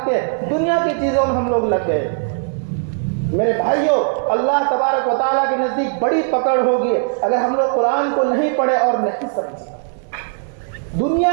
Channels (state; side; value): silent; left; 65 dB below the other